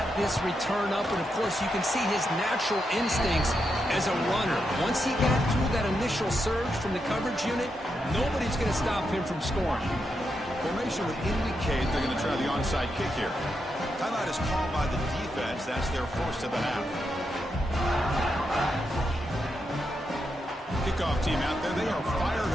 this return up, and of course you can see his natural instincts as a runner. Once he got through that initial surge from the coverage unit, nobody's going to stop him from scoring. Formation would indicate they're going to try the onside kick here. Timeout is called by the defense. That's their first of the half. Kickoff team out there, they are fired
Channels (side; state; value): both; normal; correlation 0.84